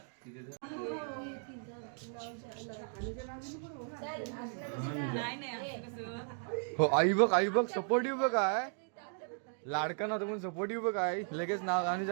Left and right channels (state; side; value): silent; left; 54 dB below the other